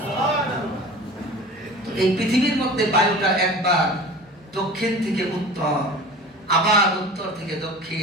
তো এই পৃথিবীর মধ্যে বায়ুটা একবার দক্ষিণ থেকে উত্তর, আবার উত্তর থেকে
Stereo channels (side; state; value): both; normal; correlation 0.38